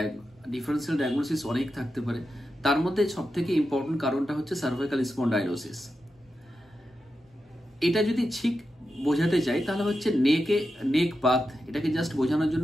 ডিফারেন্সিয়াল ডায়াগনোসিস অনেক থাকতে পারে। তার মধ্যে সবথেকে ইম্পর্টেন্ট কারণটা হচ্ছে সার্ভাইকাল স্পন্ডাইলোসিস। এটা যদি ঠিক বোঝাতে চাই তাহলে হচ্ছে নেক বাত, এটাকে জাস্ট বোঝানোর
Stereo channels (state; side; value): normal; both; correlation 0.89